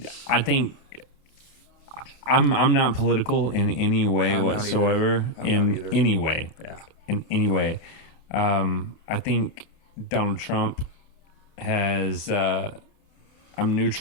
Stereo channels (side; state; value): right; late; 29 ms